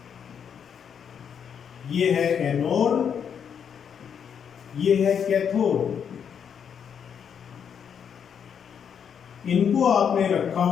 ये है एनोड, ये है कैथोड। इनको आपने रखा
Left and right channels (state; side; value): quieter; right; 7.7 dB